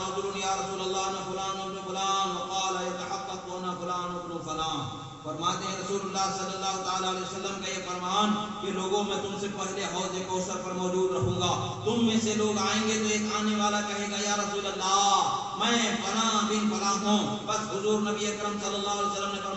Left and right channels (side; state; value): both; identical; correlation 1.00